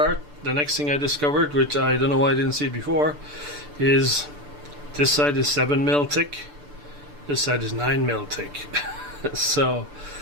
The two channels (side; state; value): left; late; 6.8 ms